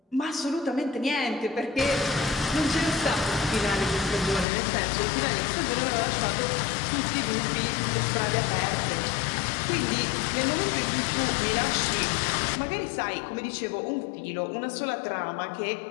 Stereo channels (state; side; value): drops out; right; at 4.5 s